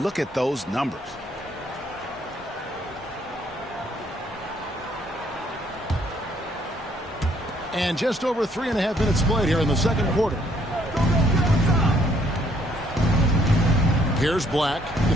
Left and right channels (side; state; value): both; normal; correlation 0.66